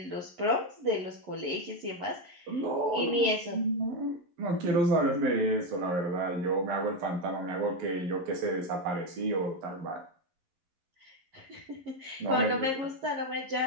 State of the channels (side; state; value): left; late; 11 ms